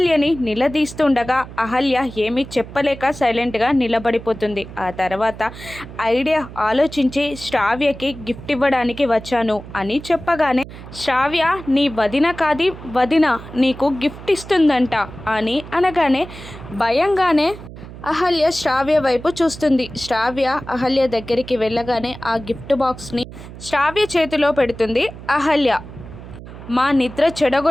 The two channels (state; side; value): noise; right; hum, 14 dB below the sound